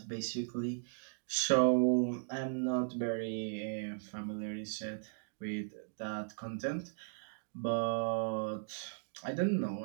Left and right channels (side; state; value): left; silent; digital silence